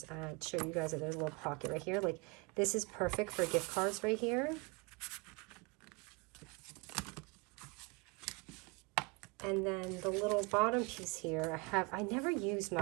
show you guys that there's a little pocket right here. Like, this is perfect for gift cards right here. And then the little bottom piece here, I never use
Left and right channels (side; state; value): left; quieter; 28.2 dB